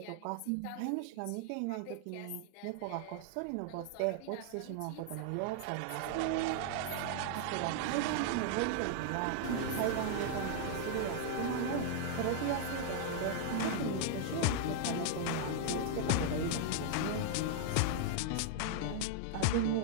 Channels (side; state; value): both; different; correlation 0.00